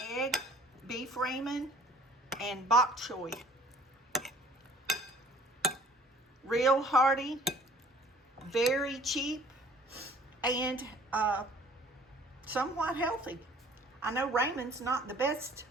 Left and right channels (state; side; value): normal; both; correlation 0.53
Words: egg, beef ramen, and bok choy. Real hearty, very cheap, and somewhat healthy. I know ramen's not the best,